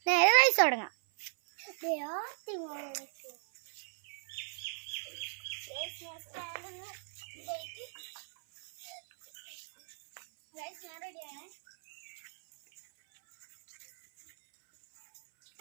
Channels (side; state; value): left; silent; 54 dB below the other